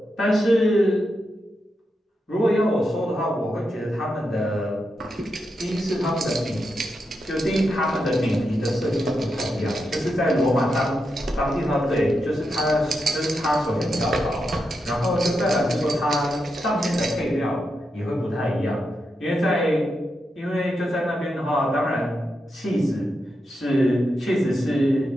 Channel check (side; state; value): both; normal; correlation 0.86